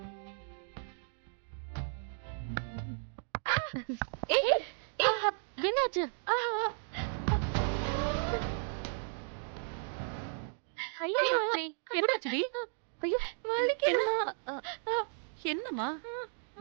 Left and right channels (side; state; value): left; silent; digital silence